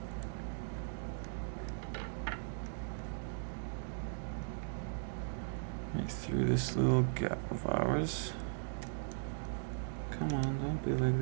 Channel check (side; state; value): left; silent; digital silence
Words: Right through this little gap of ours. Come on, don't be like